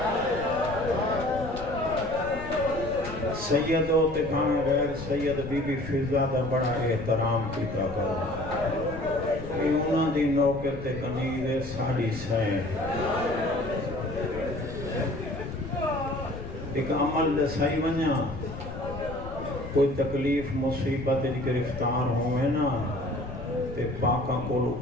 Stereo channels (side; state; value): left; noise; rumble, 11 dB below the sound